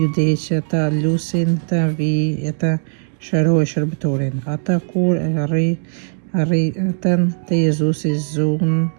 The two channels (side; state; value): left; silent; digital silence